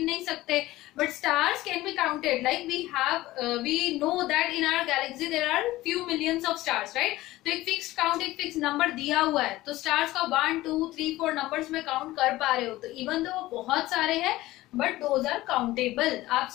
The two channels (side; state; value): right; quieter; 17.3 dB